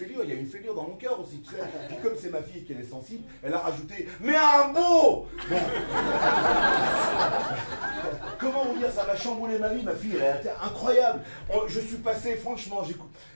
il y a une fêlure dans mon cœur aussi, tu sais. Puis comme c'est ma fille et qu'elle est sensible, elle a rajouté « Mais un beau !» Bon. Comment vous dire, ça m'a chamboulé ma vie, ma fille, elle a été incroyable. Je suis passé, franchement,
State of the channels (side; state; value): both; inverted; correlation -1.00